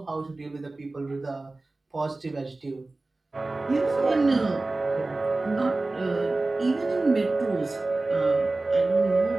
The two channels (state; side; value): quieter; left; 3.1 dB